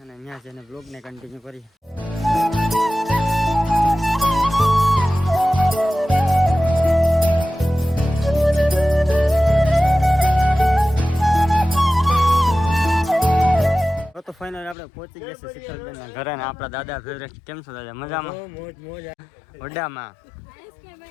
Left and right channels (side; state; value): right; drops out; at 14.8 s